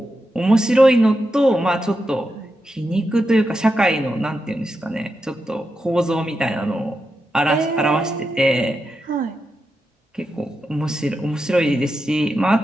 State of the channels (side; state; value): both; normal; correlation 0.87